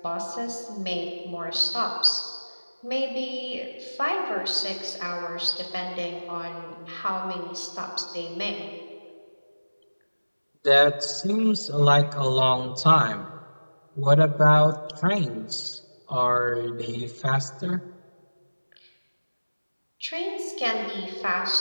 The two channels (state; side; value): inverted; both; correlation -1.00